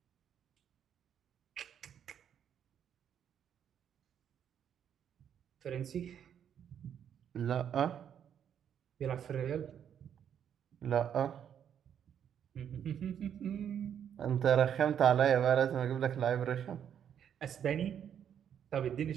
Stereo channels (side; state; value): left; quieter; 8.9 dB